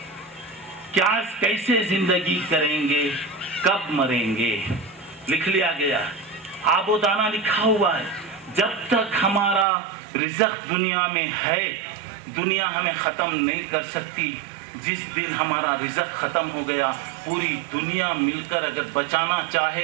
کیا کیسے زندگی کریں گے، کب مریں گے، لکھ لیا گیا، آب و دانہ لکھا ہوا ہے۔ جب تک ہمارا رزق دنیا میں ہے دنیا ہمیں ختم نہیں کر سکتی۔ جس دن ہمارا رزق ختم ہو گیا پوری دنیا مل کر اگر بچانا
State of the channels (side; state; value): left; drops out; at 9.7 s